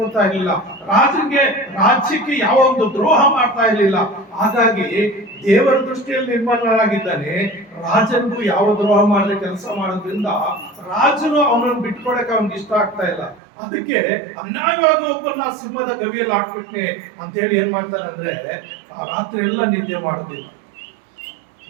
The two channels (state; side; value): drops out; left; at 13.4 s